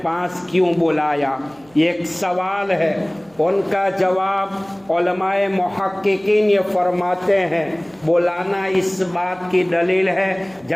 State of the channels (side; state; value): right; noise; hum, 29 dB below the sound